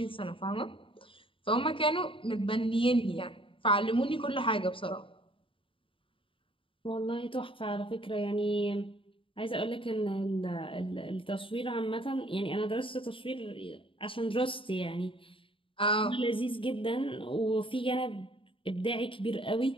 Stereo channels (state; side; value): late; right; 0.25 ms